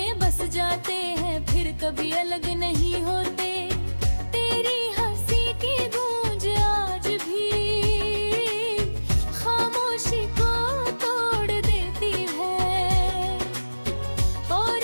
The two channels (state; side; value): inverted; both; correlation -1.00